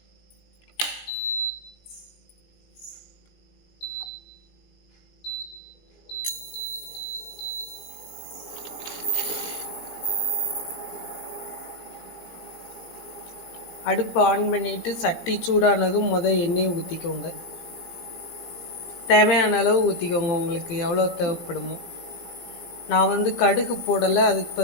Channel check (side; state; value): right; late; 17 ms